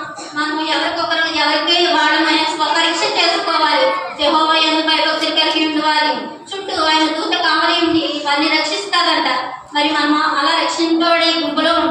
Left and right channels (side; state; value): both; identical; correlation 1.00